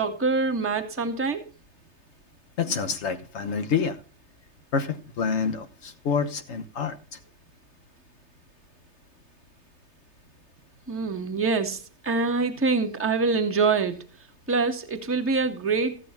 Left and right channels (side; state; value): right; late; 3.3 ms